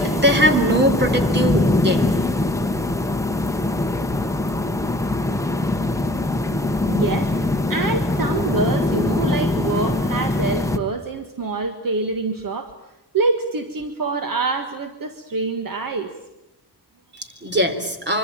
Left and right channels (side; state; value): both; normal; correlation 0.40